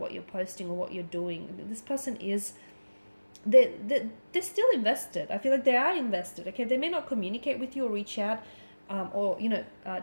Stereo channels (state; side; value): inverted; both; correlation -1.00